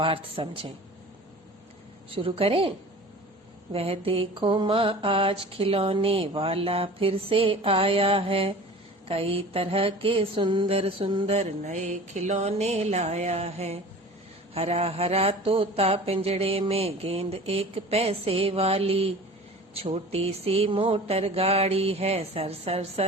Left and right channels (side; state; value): both; normal; correlation 0.40